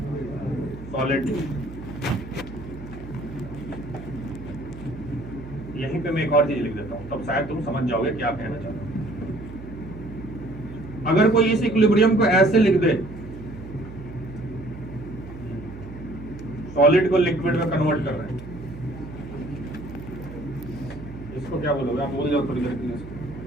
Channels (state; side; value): noise; right; hum, 13 dB below the sound